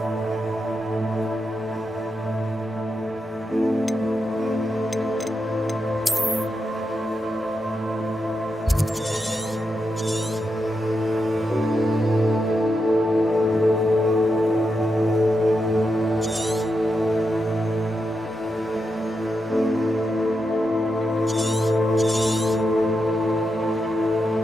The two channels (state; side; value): normal; both; correlation 0.85